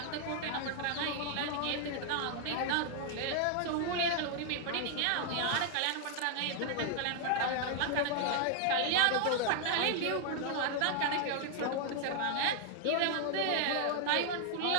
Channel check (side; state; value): both; different; correlation 0.00